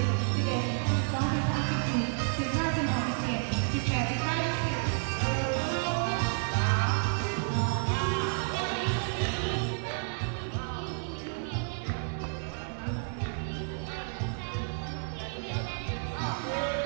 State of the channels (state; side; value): silent; left; 57 dB below the other